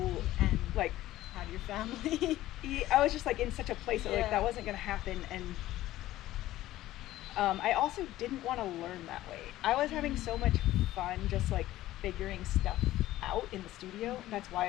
and like have your family? I was just like in such a place that like that wasn't gonna happen, and I also didn't want to learn that way. I was having so much fun just like figuring stuff out in the studio. That's why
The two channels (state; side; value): quieter; right; 15.2 dB